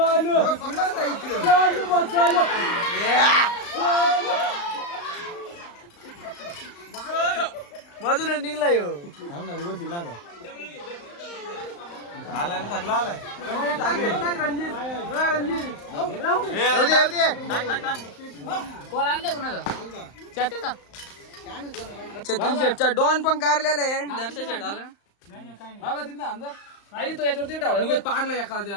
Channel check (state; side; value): late; right; 35 ms